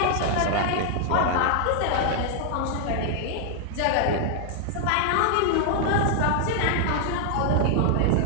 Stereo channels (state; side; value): different; both; correlation 0.00